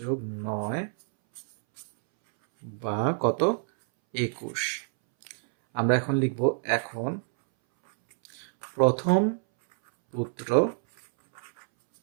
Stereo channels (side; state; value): left; silent; 60 dB below the other